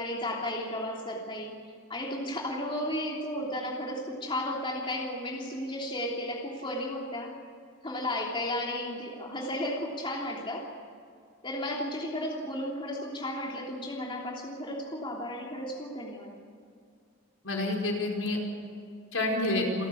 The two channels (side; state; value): both; normal; correlation 0.19